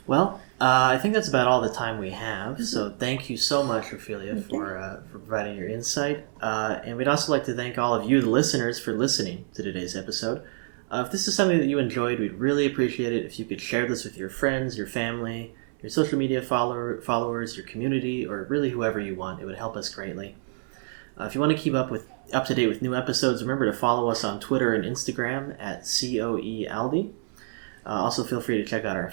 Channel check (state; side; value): silent; left; 60 dB below the other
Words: Well, I think that's about all the time we have. So thank you so much, Ofelia, for providing your insight. And we'd also like to thank all of you, the listeners, for listening to today's episode. If this is something that you enjoyed, we'd really appreciate it if you could share this with your friends, your family, your social media followers, your community, or really whoever you want. It would help us greatly. If you want to keep up to date with new episodes, remember to follow us on Twitter and Instagram at COEALDI. Also, feel free to check out our